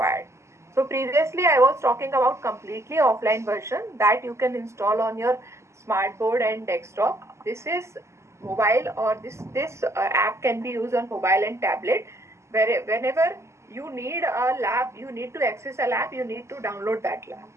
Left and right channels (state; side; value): late; left; 0.13 ms